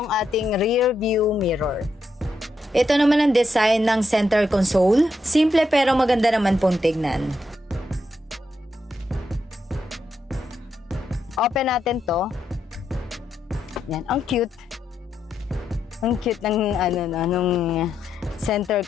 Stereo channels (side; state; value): both; normal; correlation 0.82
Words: ating rear view mirror. Ito naman ang design ng center console. Simple pero maganda naman pong tignan. Open natin to. Yan, ang cute. Ang cute ng nung center